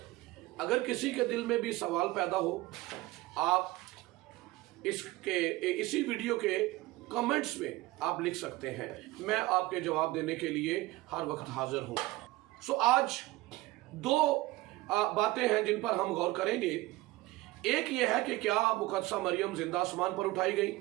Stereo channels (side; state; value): left; quieter; 18.9 dB